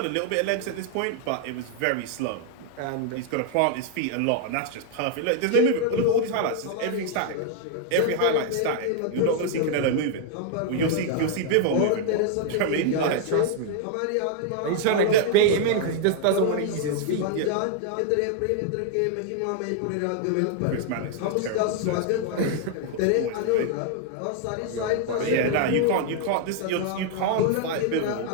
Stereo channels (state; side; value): different; both; correlation 0.00